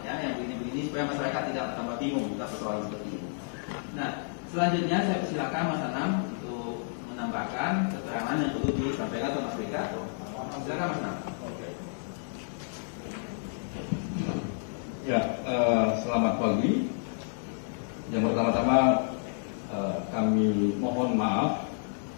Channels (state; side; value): silent; right; digital silence